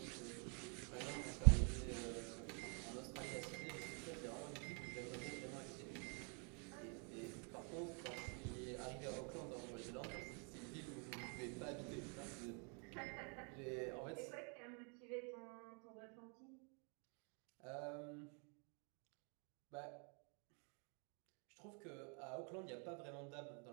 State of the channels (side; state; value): left; quieter; 37.1 dB